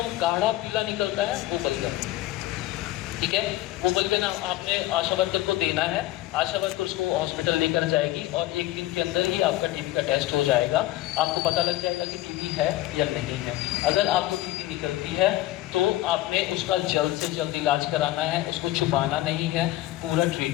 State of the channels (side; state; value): right; quieter; 16.1 dB